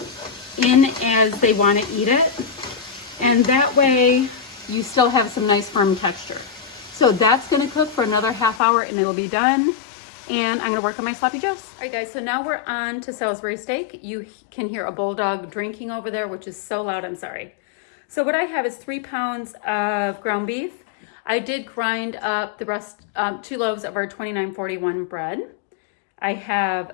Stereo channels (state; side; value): drops out; right; at 8.6 s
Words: in as they want to eat it. And that way you still have some nice firm texture. So that's going to cook for another half hour and it'll be done. And I'm going to work on my sloppy joes. All right, guys, so now we're on to Salisbury steak. You can hear a bulldog drinking over there, which is so loud, I'm sorry. So what I have is 3 pounds of ground beef. I did grind up the rest, 2 loaves of our 2941 bread. I